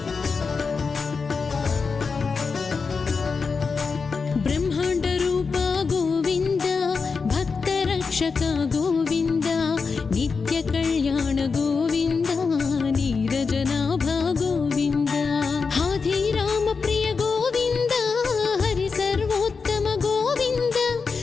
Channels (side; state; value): right; quieter; 5.0 dB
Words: బ్రహ్మాండ రూప గోవింద భక్త రక్షక గోవింద నిత్య కళ్యాణ గోవింద నీరజనాభ గోవింద హాధిరామ ప్రియ గోవింద హరి సర్వోత్తమ గోవింద